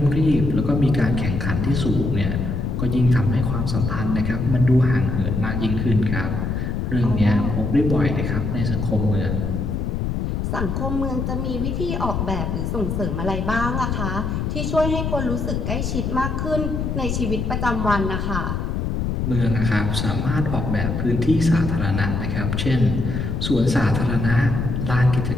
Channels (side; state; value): left; noise; rumble, 1 dB below the sound